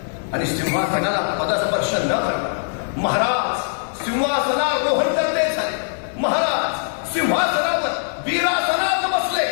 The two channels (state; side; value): silent; right; digital silence